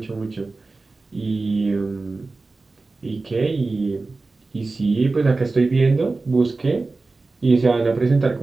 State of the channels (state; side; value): quieter; left; 3.6 dB